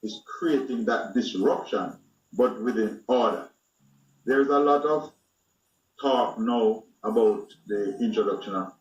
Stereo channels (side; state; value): both; identical; correlation 1.00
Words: is creating that disruption, but within order. There's a lot of talk now about the introduction of